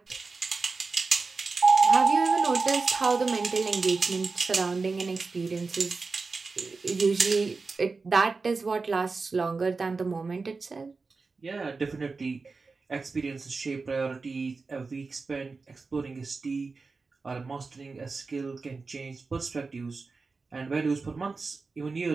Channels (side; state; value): left; quieter; 4.2 dB